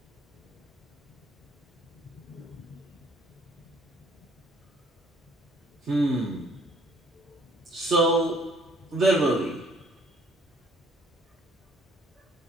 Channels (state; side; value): normal; both; correlation 0.60